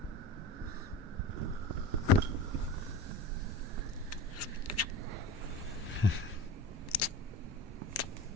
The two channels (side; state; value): both; normal; correlation 0.34